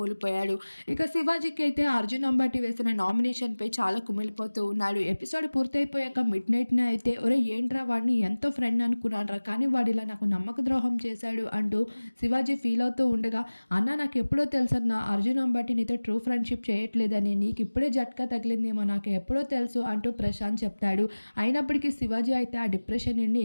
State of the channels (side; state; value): both; inverted; correlation -1.00